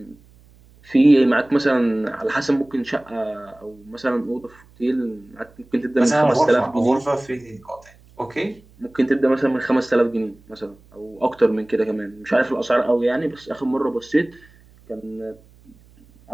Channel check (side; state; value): right; noise; hum, 27 dB below the sound